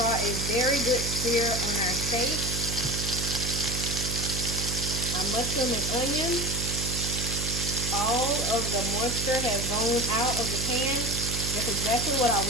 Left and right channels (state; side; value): noise; right; hum, 4 dB below the sound